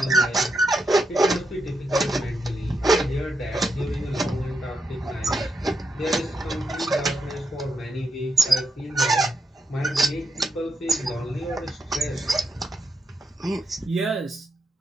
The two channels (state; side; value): normal; both; correlation 0.83